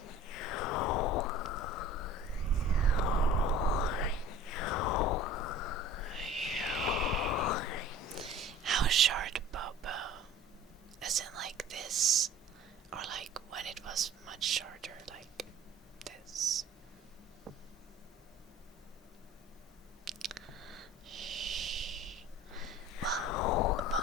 How short, Bobo? As in like this? Or like when it was much shorter, like this? Well,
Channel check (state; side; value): normal; both; correlation 0.44